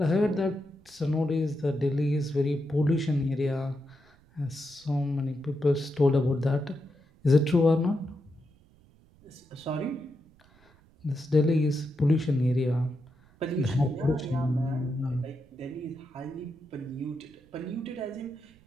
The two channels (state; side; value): noise; right; rumble, 29 dB below the sound